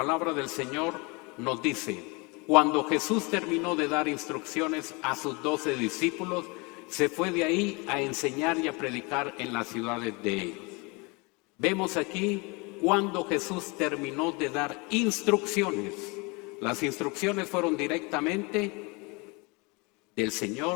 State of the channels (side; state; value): right; quieter; 28.3 dB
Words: del Señor nos dice, cuando Jesús terminó de dar instrucciones a sus 12 discípulos, se fue de ahí a enseñar y a predicar en las ciudades de ellos. Vemos aquí cuando Jesús terminó de dar instrucciones. Las instrucciones fueron directamente del